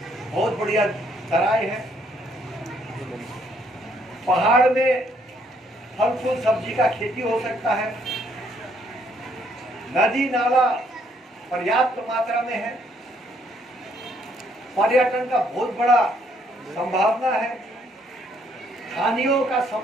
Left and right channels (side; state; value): both; normal; correlation 0.68